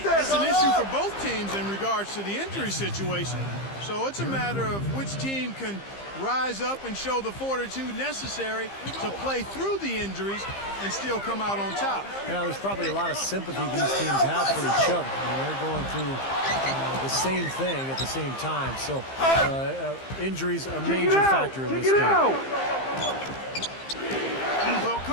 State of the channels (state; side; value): late; right; 15 ms